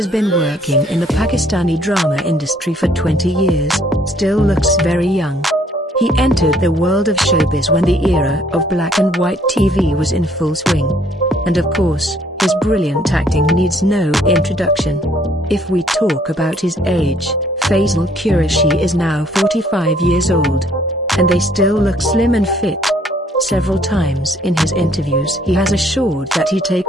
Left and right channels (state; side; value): normal; both; correlation 0.63